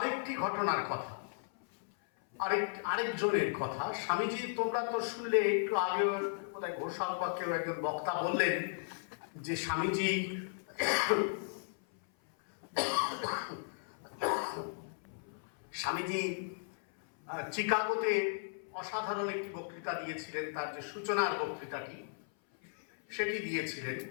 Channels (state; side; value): silent; right; 54 dB below the other